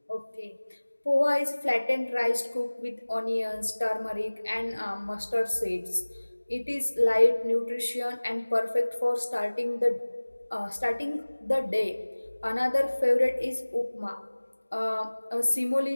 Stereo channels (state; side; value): inverted; both; correlation -1.00